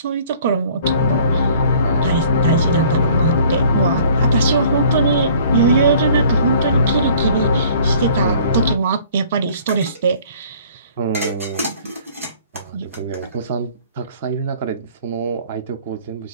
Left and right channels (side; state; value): both; inverted; correlation -0.53